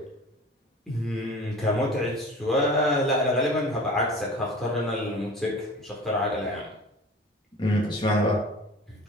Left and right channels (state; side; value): normal; both; correlation 0.40